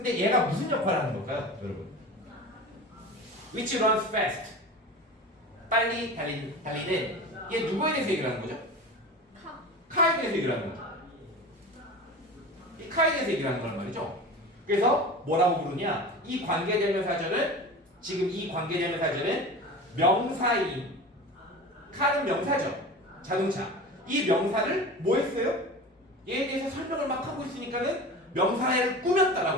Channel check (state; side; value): normal; both; correlation 0.33